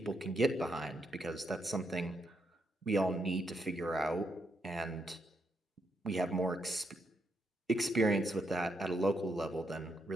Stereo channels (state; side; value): normal; both; correlation 0.79